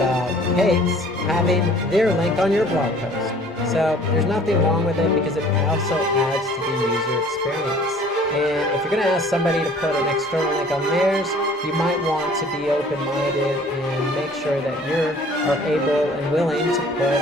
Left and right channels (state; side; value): normal; both; correlation 0.52